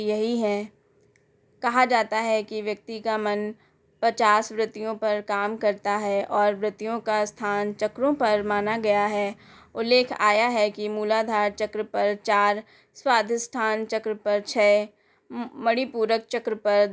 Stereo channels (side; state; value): both; identical; correlation 1.00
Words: यही है। कहा जाता है कि व्यक्ति का मन 50 वृत्तियों पर काम करता है और वृत्तियों का स्थान चक्रों पर माना गया है। उल्लेख आया है कि मूलाधार चक्र पर 4, स्वाधिष्ठान चक्र पर 6, मणिपूरक चक्र पर